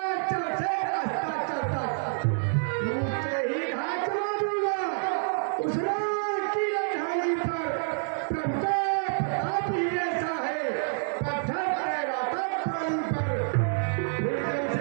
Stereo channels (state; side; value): silent; left; digital silence